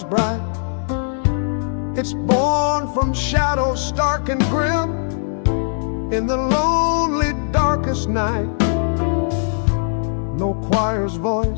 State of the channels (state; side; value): silent; right; 60 dB below the other